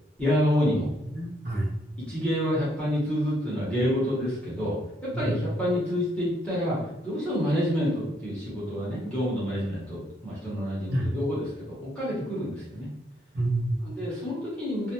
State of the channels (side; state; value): both; normal; correlation 0.72